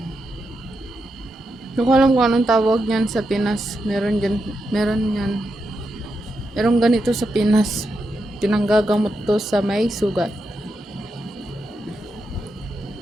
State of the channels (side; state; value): both; normal; correlation 0.85